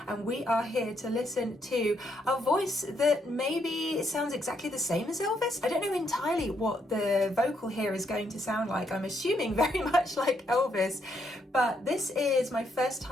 And we are here to listen to a voice that maybe sounds exactly the same as Elvis. I don't know entirely what the vocal here is going to sound like. I'm assuming very much like Elvis, but this is my first time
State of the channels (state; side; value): normal; both; correlation 0.75